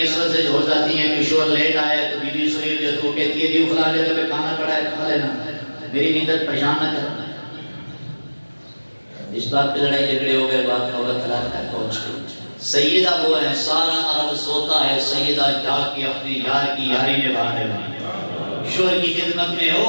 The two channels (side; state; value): both; inverted; correlation -1.00